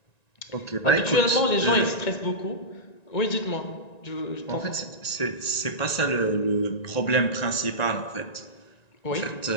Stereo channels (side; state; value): right; late; 1.9 ms